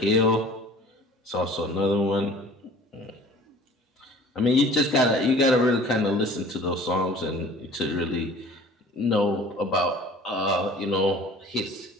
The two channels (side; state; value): both; normal; correlation 0.47